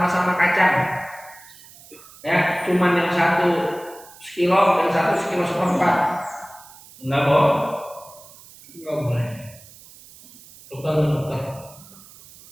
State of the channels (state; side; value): noise; right; hiss, 21 dB below the sound